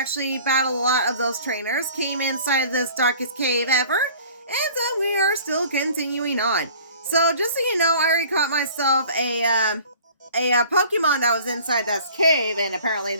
battled a lot of those trainers, came inside this darkest cave ever, and we are still continuing on. So just so you know, I already caught myself a Pokemon that was inside this cave, and apparently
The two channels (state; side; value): inverted; both; correlation -0.48